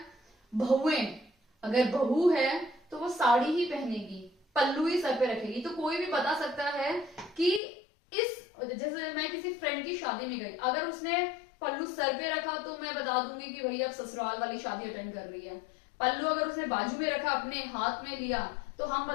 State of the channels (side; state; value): right; drops out; at 7.6 s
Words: बहुएं, अगर बहू है तो वो साड़ी ही पहनेगी, पल्लू ही सर पे रखेगी, तो कोई भी बता सकता है कि इस, जैसे मैं किसी फ्रेंड की शादी में गई, अगर उसने पल्लू सर पे रखा तो मैं बता दूंगी कि भैया अब ससुराल वाली शादी अटेंड कर रही है। पल्लू अगर उसने बाजू में रखा, अपने हाथ में लिया, तो हम